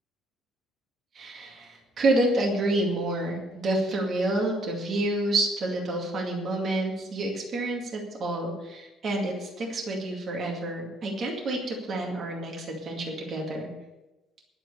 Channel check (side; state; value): both; normal; correlation 0.66